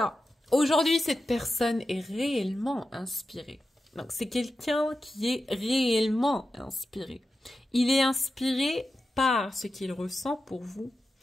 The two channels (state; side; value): normal; both; correlation 0.91